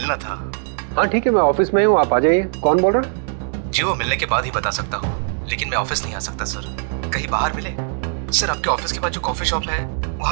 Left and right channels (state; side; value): silent; left; digital silence